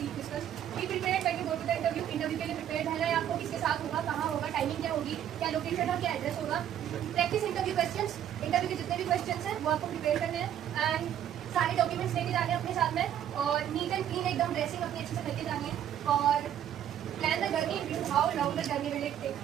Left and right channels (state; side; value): quieter; left; 10.4 dB